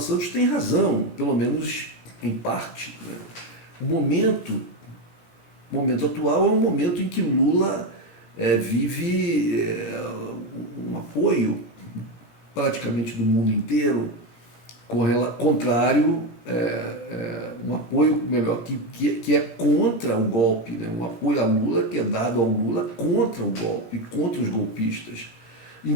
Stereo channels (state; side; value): late; right; 17 ms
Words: Santos tem razão, pelo menos em parte. O momento atual é um momento em que Lula vive um apoio praticamente do mundo inteiro, contrário, um apoio melhor que é contra o golpe, né? Um apoio a Lula que é dado ao Lula contra o golpe, contra os golpistas,